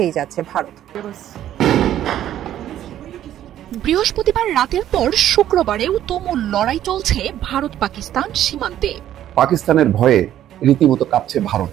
যাচ্ছে ভারত। বৃহস্পতিবার রাতের পর শুক্রবারেও তুমুল লড়াই চলছে ভারত পাকিস্তান সীমান্তে। পাকিস্তানের ভয়ে রীতিমতো কাঁপছে ভারত,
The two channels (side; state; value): left; quieter; 11.8 dB